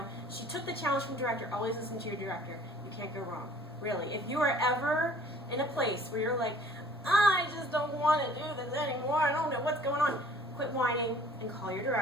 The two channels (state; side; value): normal; both; correlation 0.53